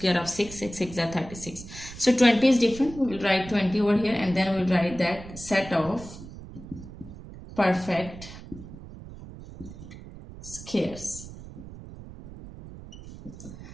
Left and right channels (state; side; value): noise; right; rumble, 14 dB below the sound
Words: of 6. 6 6 are 36. So 20 is different. We will write 20 over here, and then we will write that set of perfect squares.